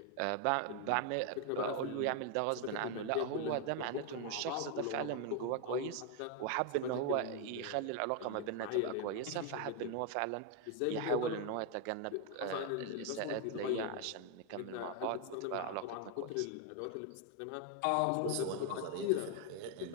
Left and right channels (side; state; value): both; different; correlation 0.01